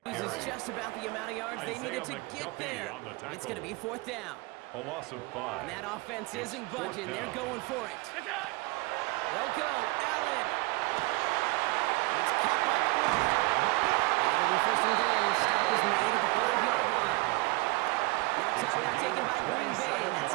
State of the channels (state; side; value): quieter; left; 24.1 dB